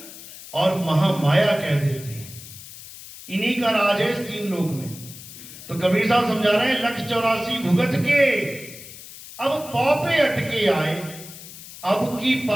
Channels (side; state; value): left; noise; hiss, 15 dB below the sound